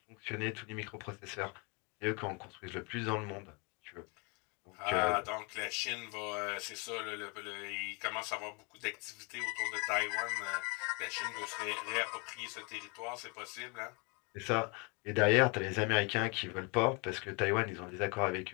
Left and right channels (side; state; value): right; quieter; 31.8 dB